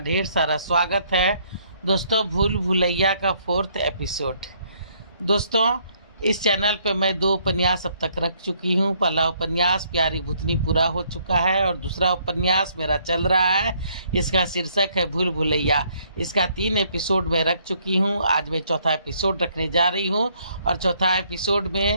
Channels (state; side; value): inverted; both; correlation -0.67